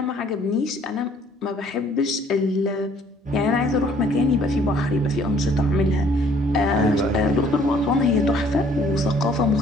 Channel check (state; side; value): normal; both; correlation 0.60